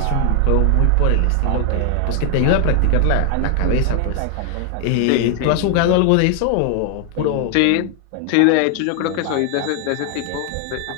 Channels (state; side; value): different; both; correlation 0.00